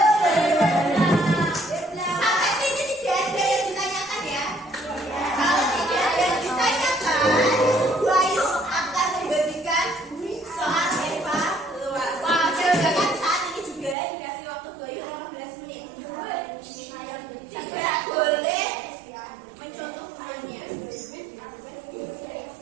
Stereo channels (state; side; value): drops out; left; at 14.0 s